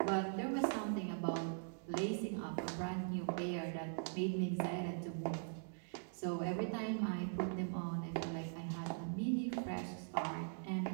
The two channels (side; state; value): left; silent; digital silence